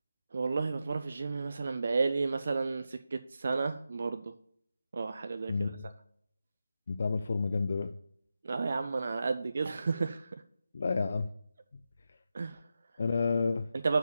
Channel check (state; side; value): inverted; both; correlation -0.89